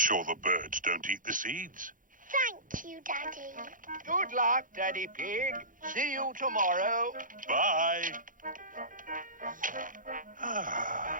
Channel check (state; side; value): late; left; 0.39 ms